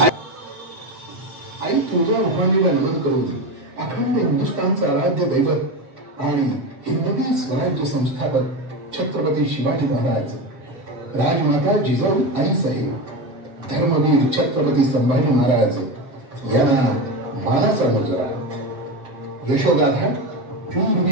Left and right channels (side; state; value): left; late; 7.8 ms